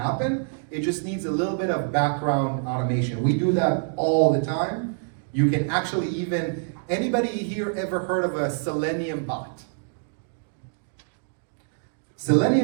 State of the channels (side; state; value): left; silent; 61 dB below the other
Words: It just needs a little bit of background automation. We do that all the time. You can actually even, anybody here ever heard of a Selenium bot?